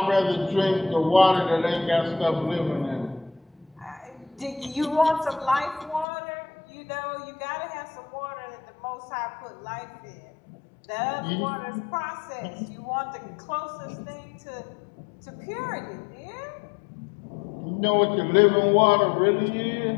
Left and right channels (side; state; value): right; drops out; at 6.1 s